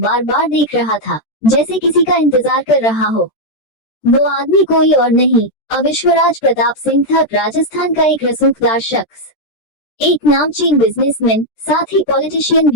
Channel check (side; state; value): right; late; 13 ms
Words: बार देख रहा था, जैसे किसी का इंतजार कर रहा हो। वो आदमी कोई और नहीं, विश्वराज प्रताप सिंह था, राजस्थान का एक रसूखदार शख्स, एक नामचीन बिजनेसमैन, साथ ही पॉलिटिशियन